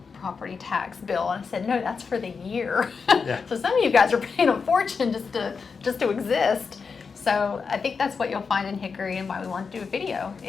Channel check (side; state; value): right; quieter; 5.3 dB